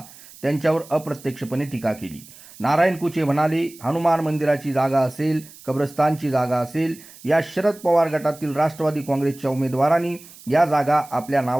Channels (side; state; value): right; noise; hiss, 21 dB below the sound